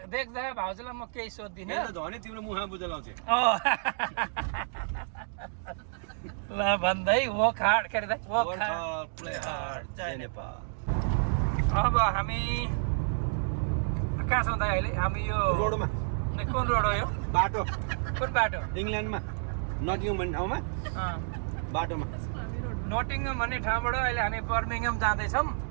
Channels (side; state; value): left; silent; digital silence